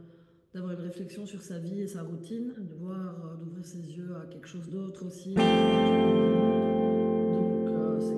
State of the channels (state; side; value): identical; both; correlation 1.00